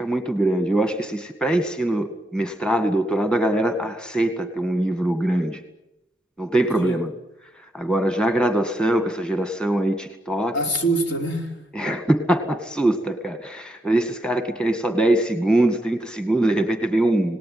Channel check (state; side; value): normal; both; correlation 0.81